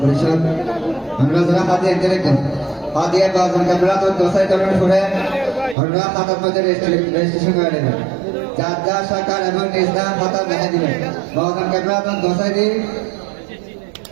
परिषद हमरा जरा हाथी एक जरे कम हाथी एक बार उनका बड़ा तो दोसा करने छोड़े हमरा खाता में रजिस्ट्रेशन कर लेना जादा सरकार एवं निष्ठा खाता नहीं दिले बहुत उनका बड़ा तो दोसा दी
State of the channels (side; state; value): left; drops out; at 5.8 s